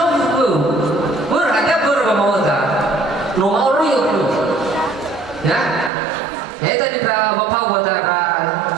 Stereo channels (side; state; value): left; drops out; at 5.9 s